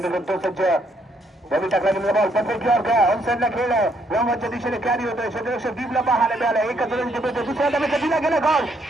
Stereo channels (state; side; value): normal; both; correlation 0.71